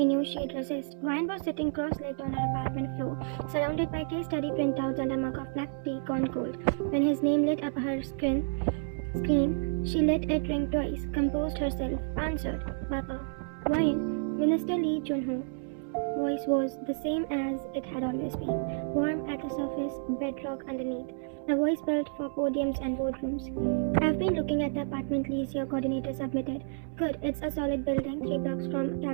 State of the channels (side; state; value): left; silent; 58 dB below the other